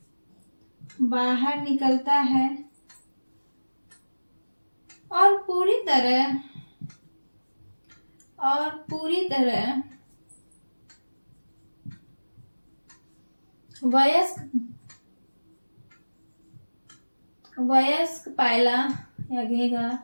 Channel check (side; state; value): both; inverted; correlation -1.00